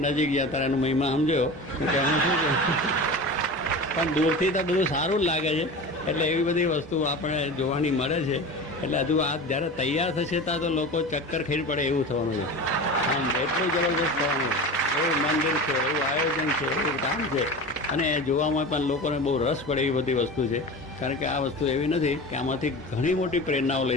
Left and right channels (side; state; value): both; normal; correlation 0.31